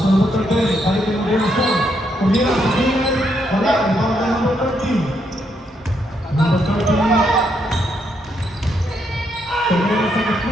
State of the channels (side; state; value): both; normal; correlation 0.77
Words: to number 13. Balik yung motivasyon. Kumira sa gilid. Wala. Ibang na number 13. Number 13. Tumira sa